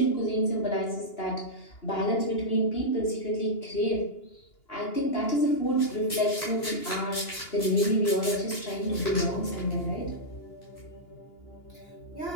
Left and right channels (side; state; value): right; late; 2.8 ms